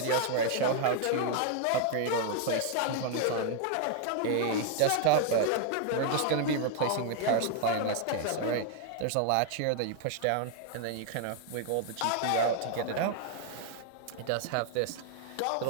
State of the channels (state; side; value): different; both; correlation 0.00